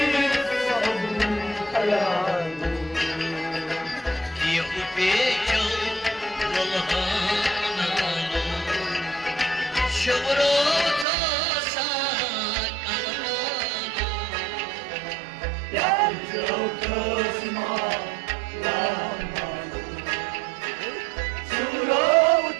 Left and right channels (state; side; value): drops out; left; at 11.1 s